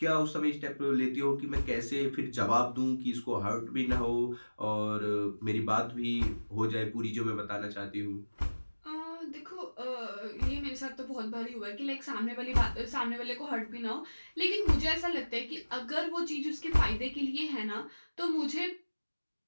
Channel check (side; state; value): both; inverted; correlation -1.00